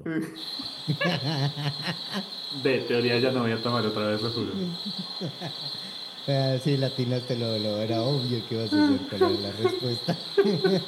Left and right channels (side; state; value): both; identical; correlation 1.00